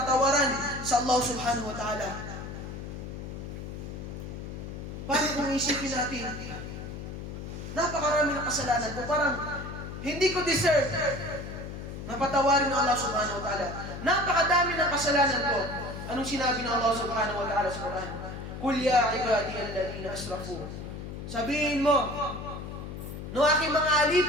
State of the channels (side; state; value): left; noise; hum, 8 dB below the sound